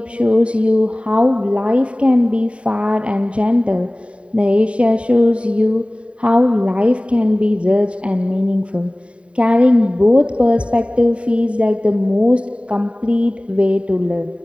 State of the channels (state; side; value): late; left; 0.061 ms